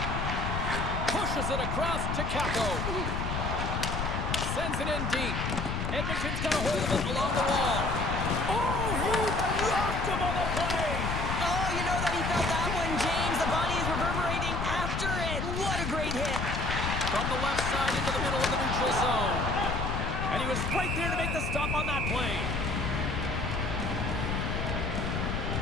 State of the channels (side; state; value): left; noise; rumble, 2 dB below the sound